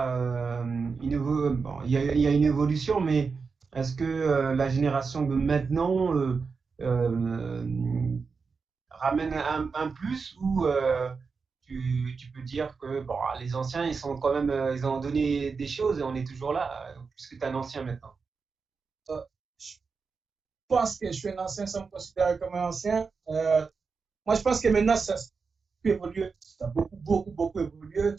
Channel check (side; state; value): left; quieter; 5.0 dB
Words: il y a une évolution, mais est-ce que la génération de maintenant ramène un plus ou tu peux dire que bon, les anciens, ils sont quand même, ils ont donné des choses et on est toujours là, puisque tu es un ancien maintenant. Euh, je pense que je suis un ancien sans me considérer comme un ancien. Moi, je pense que maintenant, ça a pu évoluer. Ça a beaucoup évolué, que